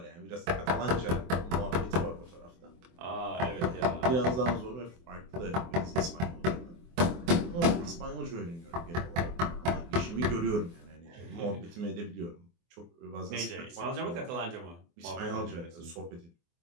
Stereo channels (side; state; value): left; late; 24 ms